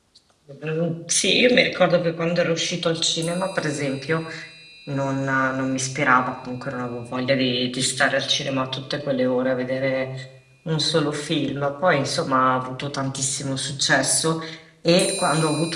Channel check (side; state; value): both; identical; correlation 1.00